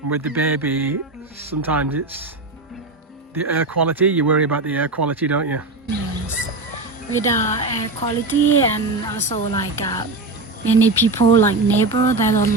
And with the baby, sometimes it's the air quality. You worry about the air quality, don't you? Yes. With air quality, and also like many people like neighbor, they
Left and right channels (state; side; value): quieter; left; 3.3 dB